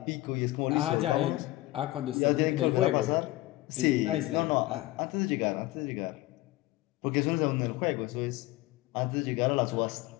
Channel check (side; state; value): right; quieter; 18.1 dB